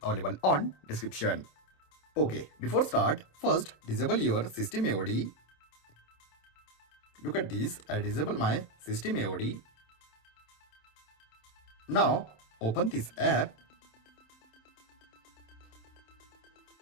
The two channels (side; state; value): right; late; 27 ms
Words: available on description. Okay, before start, first disable your system AOD. Look at this, I disable my system AOD. Now open this app.